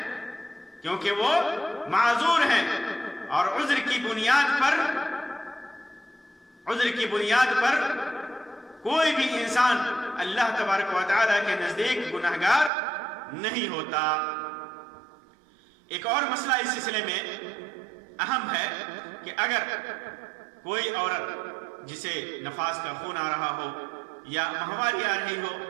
معذور ہیں. اور عذر کی بنیاد پر کوئی بھی انسان اللہ تبارک و تعالیٰ کے نزدیک گناہگار نہیں ہوتا. ایک اور مسئلہ اس سلسلے میں اہم ہے کہ اگر کوئی عورت جسے نفاس کا خون آ رہا ہو یا ماہواری آ رہی ہو،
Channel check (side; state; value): left; drops out; at 12.7 s